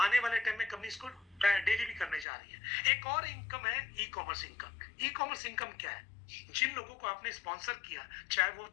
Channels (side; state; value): right; drops out; at 2.2 s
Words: वाले टाइम में कंपनी इसको डेली भी करने जा रही है। एक और इनकम है e commerce income. E commerce income क्या है? जिन लोगों को आपने स्पॉन्सर किया, चाहे वो